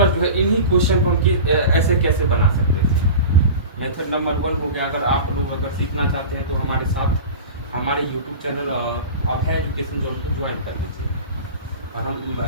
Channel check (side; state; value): both; inverted; correlation -0.33